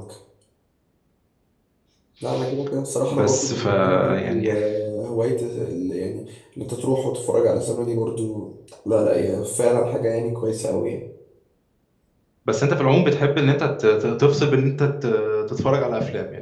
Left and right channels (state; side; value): identical; both; correlation 1.00